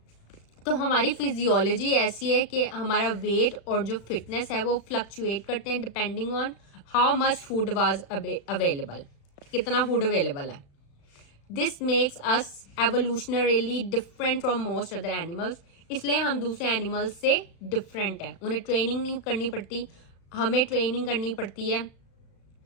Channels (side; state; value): right; late; 36 ms